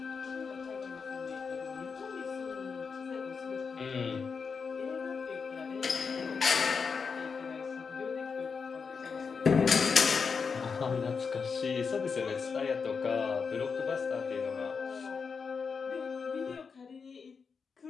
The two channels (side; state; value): right; quieter; 5.5 dB